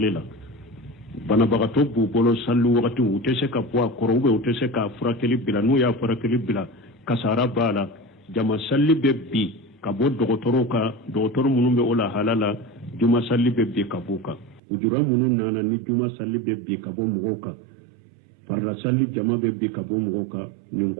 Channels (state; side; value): drops out; left; at 14.6 s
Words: la bana bagato bu bolo sallu wakati utese ka poa korobe utese ka furakeli bila no ya furakeli bila kasara bala jama salli be bi ka bo dogotoro munun be ola halala juma salli be bi ka buka ujura munun nana ni juma salli be bi ka bo mugoka farra salli jama be bi ka bo mugoka nin